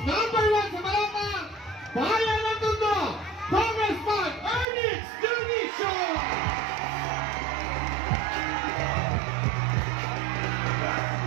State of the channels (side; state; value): left; drops out; at 4.7 s